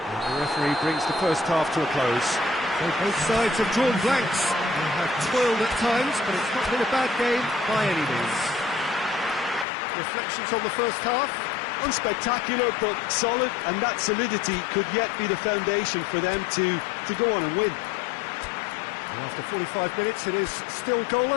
referee brings the first half to a close. So both sides have drawn blanks. They have toiled at times, but it's not been a bad game by any means. Reflections on the first half? Unspectacular, but solid, and that solidity could yet be the foundation for them to go on and win. And after 45 minutes, it is still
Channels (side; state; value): right; drops out; at 9.7 s